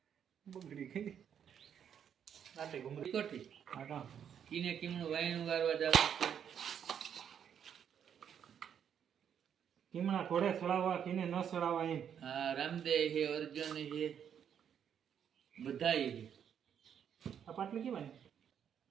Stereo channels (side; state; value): left; quieter; 8.5 dB